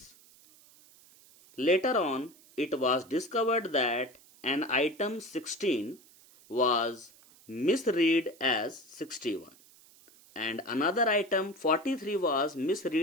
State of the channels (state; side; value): noise; right; hiss, 26 dB below the sound